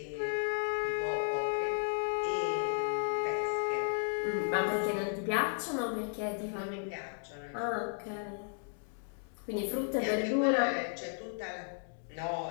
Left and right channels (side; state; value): right; silent; 55 dB below the other